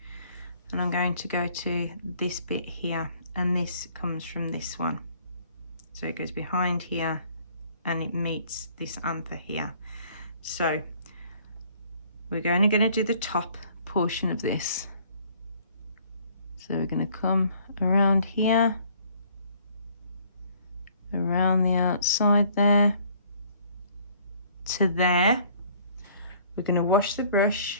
and I'm going to go to this bit here, and this comes from this one. So it goes behind here and it meets this anther here. So we're only going to do the top portion of this. So we're going to come around here, around the outside there, to there. We're going to wash the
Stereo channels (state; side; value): inverted; both; correlation -0.58